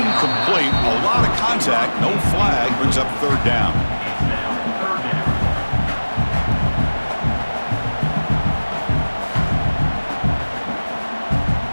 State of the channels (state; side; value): inverted; both; correlation -1.00